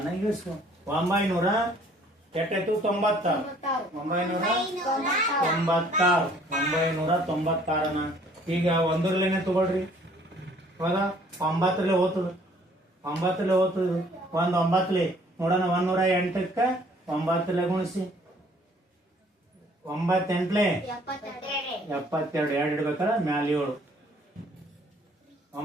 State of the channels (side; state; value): both; normal; correlation 0.58